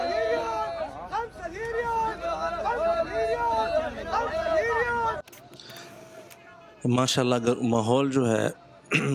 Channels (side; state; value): both; identical; correlation 1.00